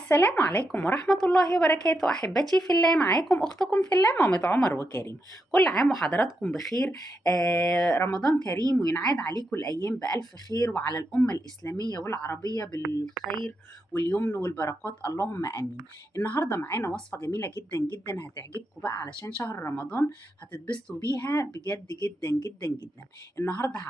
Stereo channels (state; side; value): normal; both; correlation 0.84